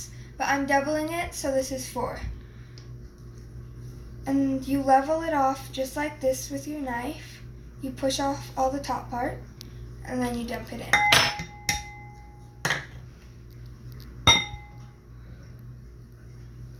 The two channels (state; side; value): identical; both; correlation 1.00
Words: but I'm doubling it, so this is 4. And you level it off just like this with your knife. You push off all the top part, and then you dump it in.